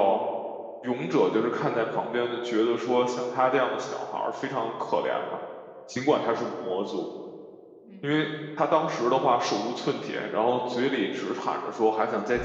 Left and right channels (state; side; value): identical; both; correlation 1.00